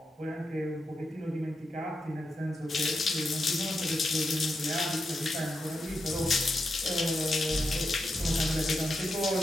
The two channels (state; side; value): normal; both; correlation 0.86